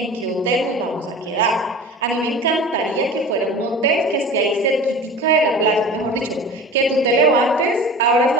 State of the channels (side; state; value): both; normal; correlation 0.37